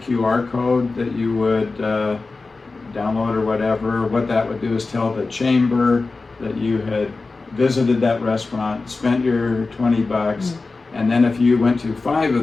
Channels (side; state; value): right; quieter; 3.8 dB